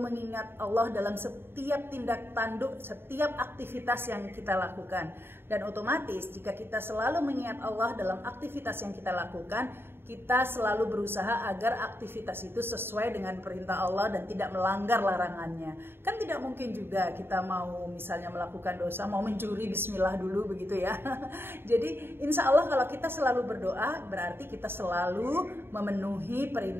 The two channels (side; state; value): left; late; 0.11 ms